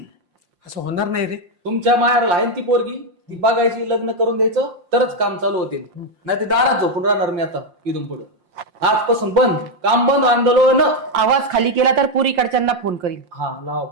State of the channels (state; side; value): late; left; 5.7 ms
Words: असं होणार नाही रे. तुमच्या मायाला आहे ना ती पोरगी, ती बघायची, लग्न करून द्यायचं तरच काम चालू होतील. नाही ते दारात झोपून राहणार मी आता इथून पुढे. आजपासून बंद, काम बंद, आंदोलन. आवाज खाली केला तर पुरीकडच्यांना फोन करील. हा लावा